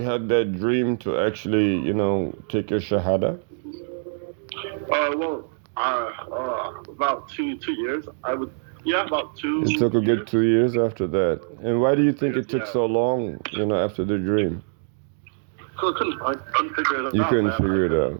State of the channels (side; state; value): left; silent; digital silence